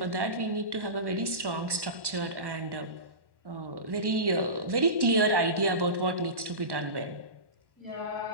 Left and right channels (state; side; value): late; left; 1.1 ms